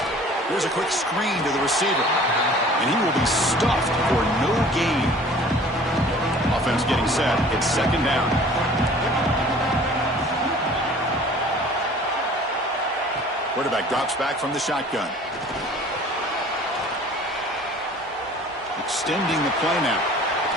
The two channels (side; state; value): both; normal; correlation 0.48